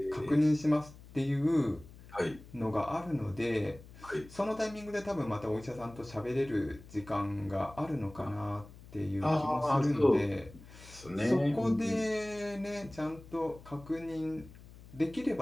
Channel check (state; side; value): noise; left; hum, 19 dB below the sound